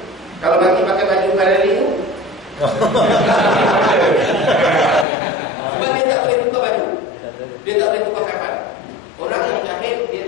Kalau mati pakai baju Ferrari tu. Sebab dia tak boleh tukar baju. Dia tak boleh tukar kafan. Orang yang syahid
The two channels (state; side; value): drops out; right; at 5.1 s